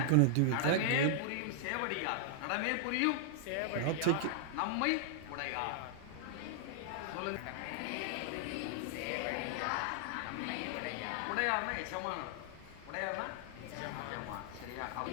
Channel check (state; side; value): different; both; correlation 0.00